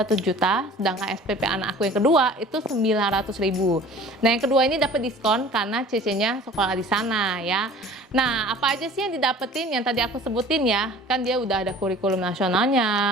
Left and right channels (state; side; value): normal; both; correlation 0.46